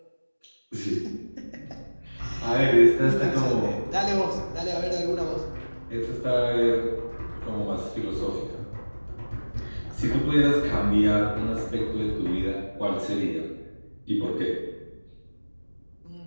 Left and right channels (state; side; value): inverted; both; correlation -1.00